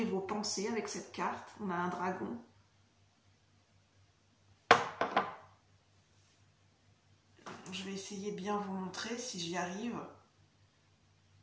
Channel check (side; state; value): both; identical; correlation 1.00